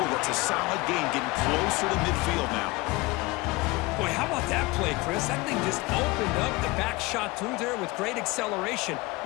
That's a solid gain, getting closer to midfield now. Boy, how about that play, Chris? That thing just opened up. The back shot through there with great acceleration.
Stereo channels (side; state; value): right; quieter; 22.6 dB